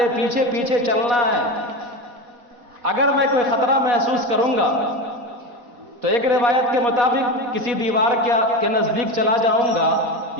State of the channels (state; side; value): late; left; 4.2 ms